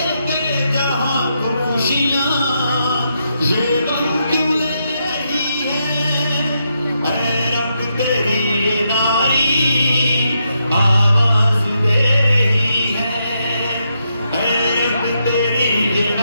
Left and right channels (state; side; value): inverted; both; correlation -0.81